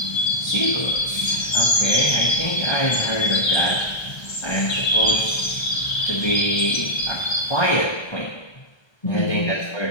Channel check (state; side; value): late; right; 1.3 ms